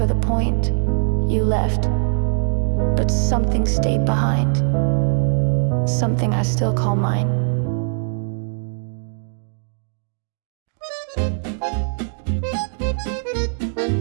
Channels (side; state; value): left; silent; 65 dB below the other